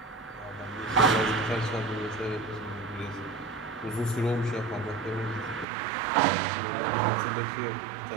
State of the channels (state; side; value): drops out; left; at 5.7 s